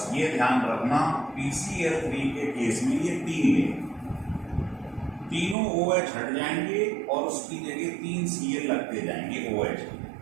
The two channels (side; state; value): left; drops out; at 5.6 s